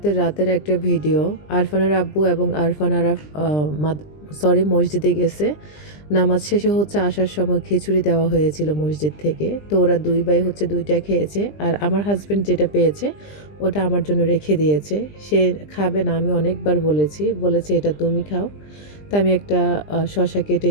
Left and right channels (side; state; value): right; late; 20 ms